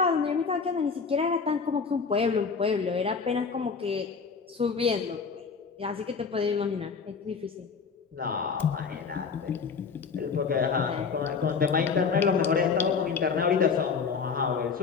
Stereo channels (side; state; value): right; quieter; 5.5 dB